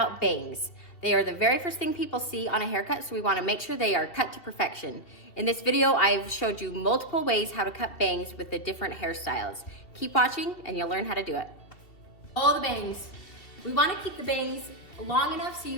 bangs. They are the very first thing people see on a haircut, so we want to make sure they are cut to perfection. In this video, I've showed you multiple ways how to cut bangs with the different hairstyles. Keep watching and you'll learn how to do it. All the bangs. We want to keep the bangs long enough so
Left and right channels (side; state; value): right; late; 2.6 ms